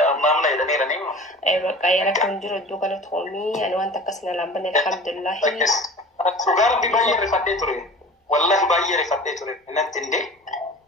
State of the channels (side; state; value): both; normal; correlation 0.39